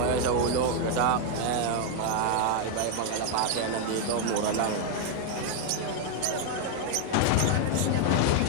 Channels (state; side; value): different; both; correlation 0.01